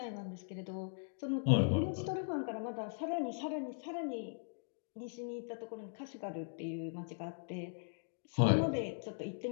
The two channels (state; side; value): silent; right; digital silence